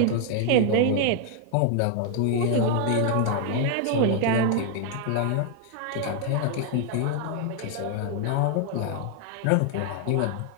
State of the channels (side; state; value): both; different; correlation 0.00